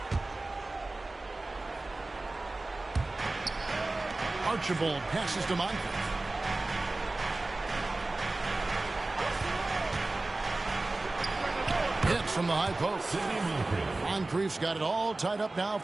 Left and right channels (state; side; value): quieter; left; 3.0 dB